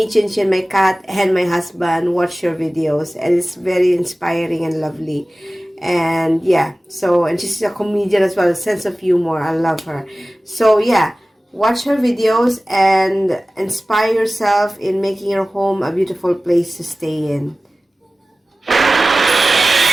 Chinchin, my cat, and my husband watch your videos, and it's very inspiring and lovely. And yeah, and she's a comedian as well, a sense of humor. I love her. So yeah, watch her videos and inspire yourself in making your home a beautiful place to stay in.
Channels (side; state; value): both; normal; correlation 0.97